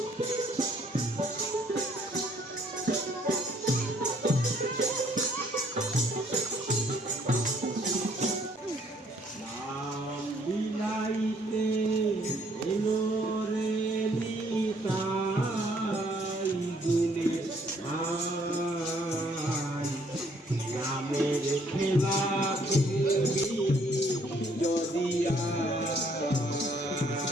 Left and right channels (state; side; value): normal; both; correlation 0.64